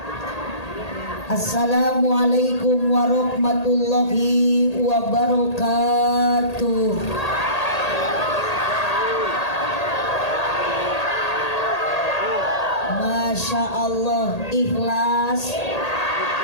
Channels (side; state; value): right; late; 1.8 ms